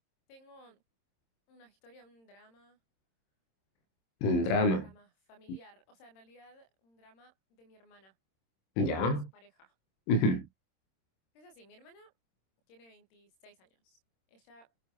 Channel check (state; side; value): late; right; 26 ms